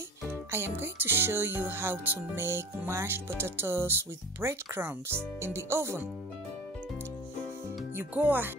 I am going to show you how to make mashed potatoes with breadcrumbs in the oven. You go ahead.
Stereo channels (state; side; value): normal; both; correlation 0.39